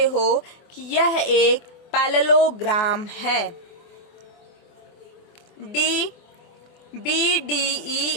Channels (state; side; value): late; right; 24 ms